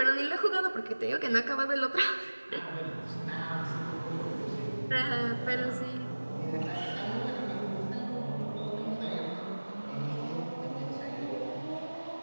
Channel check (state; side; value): inverted; both; correlation -1.00